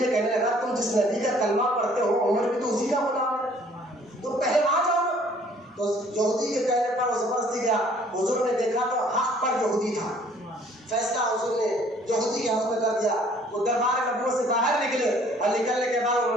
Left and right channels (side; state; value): both; normal; correlation 0.58